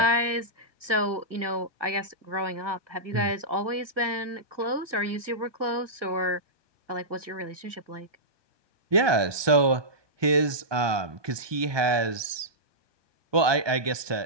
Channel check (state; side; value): late; left; 1.2 ms